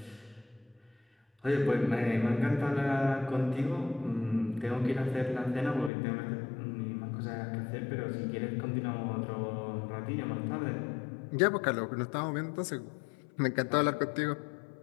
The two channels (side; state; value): right; drops out; at 5.9 s